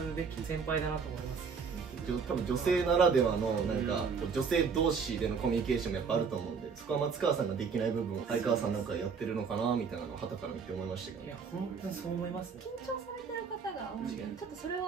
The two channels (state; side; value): quieter; left; 5.7 dB